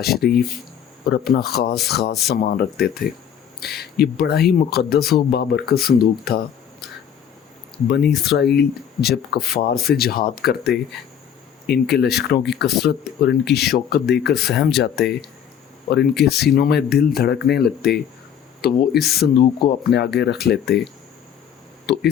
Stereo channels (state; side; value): quieter; right; 8.8 dB